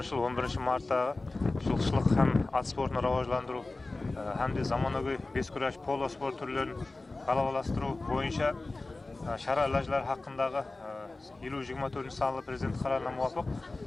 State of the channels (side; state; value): right; quieter; 3.2 dB